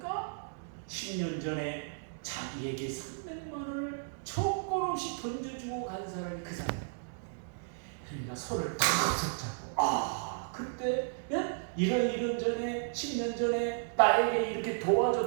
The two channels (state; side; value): silent; left; digital silence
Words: 10년 전에 자기에게 300만 원을 조건 없이 던져주고 간 사람이 그 사람이야. 그러니까 손을 탁 잡고 그때 이런 전에 10년 전에 나에게 이렇게